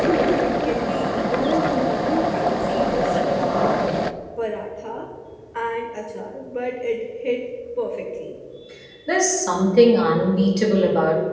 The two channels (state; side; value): identical; both; correlation 1.00